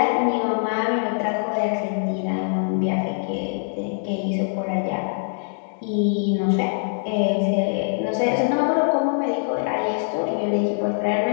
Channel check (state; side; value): silent; right; digital silence